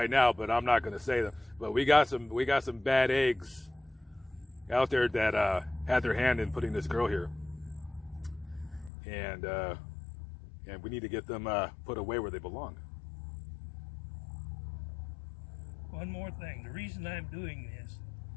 now, but I'm not going to say them. But we got some bad eggs out there that had their hand in putting this girl here, and we need to get them put away where they belong. one more thing, the reason I'm doing this,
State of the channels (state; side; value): drops out; right; at 8.9 s